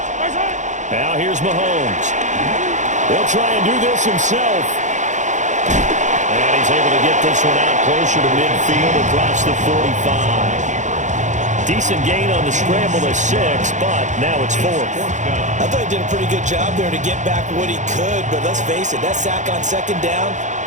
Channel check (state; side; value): late; left; 0.35 ms